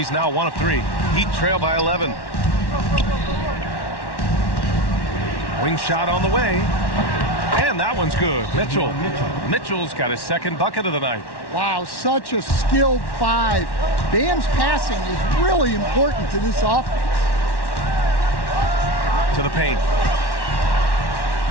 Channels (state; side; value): late; right; 1.1 ms